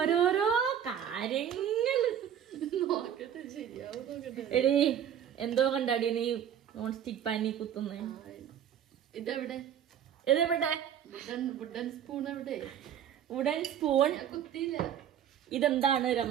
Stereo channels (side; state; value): left; quieter; 9.4 dB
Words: കാര്യങ്ങള്. എടീ എന്തോ കണ്ടാടി നീ നോൺ സ്റ്റിക് പാനി കുത്തുന്നേ? ഇതെവിടെ? വുഡൻ സ്പൂൺ എവിടെ? വുഡൻ സ്പൂൺ ഇതെന്താണ്